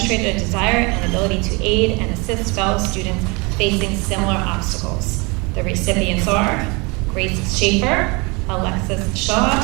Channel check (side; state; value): left; quieter; 28.0 dB